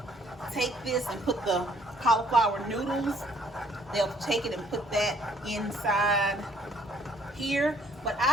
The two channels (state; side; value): normal; both; correlation 0.62